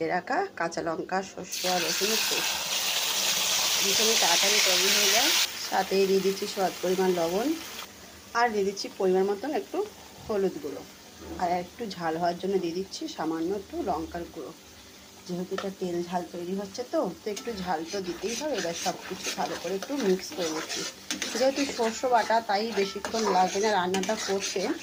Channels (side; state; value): both; identical; correlation 1.00